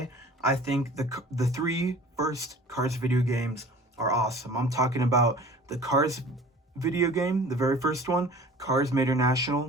I think the three first Cars video games are awesome. I'm talking about the Cars video game, the very first one, Cars Made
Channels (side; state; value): both; normal; correlation 0.45